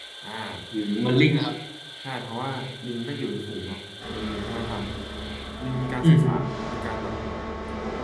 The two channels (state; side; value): identical; both; correlation 1.00